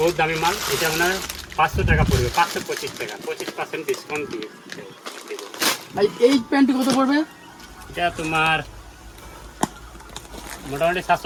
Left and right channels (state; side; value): identical; both; correlation 1.00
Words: বহুত দামি মাল, এটা আপনার 500 টাকা পড়বে, 525 টাকা, 25% ডিসকাউন্ট দিয়ে। এই প্যান্টটি কত পড়বে? এটা তোমার মোটামুটি